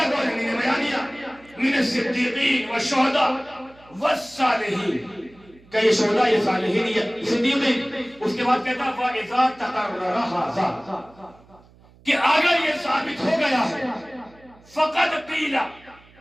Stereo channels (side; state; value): right; noise; hum, 27 dB below the sound